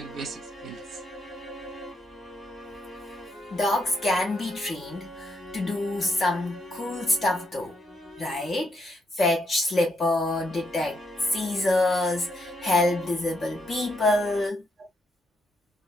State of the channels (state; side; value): normal; both; correlation 0.77